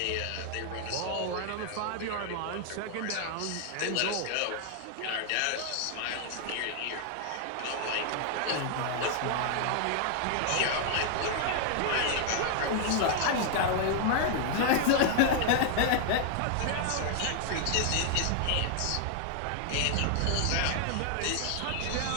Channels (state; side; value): different; both; correlation 0.00